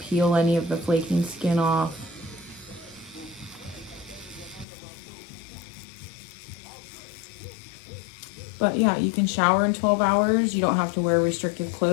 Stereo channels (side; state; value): right; drops out; at 4.7 s